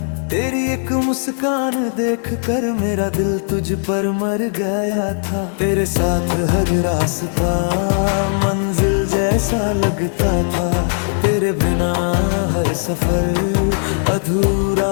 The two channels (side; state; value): right; silent; digital silence